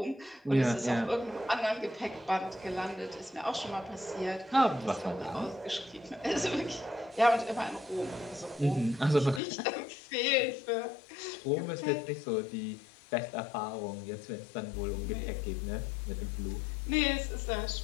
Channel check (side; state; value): right; drops out; at 9.4 s